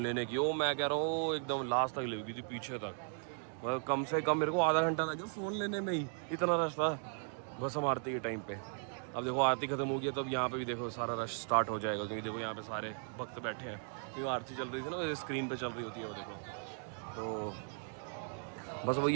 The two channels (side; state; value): left; silent; 53 dB below the other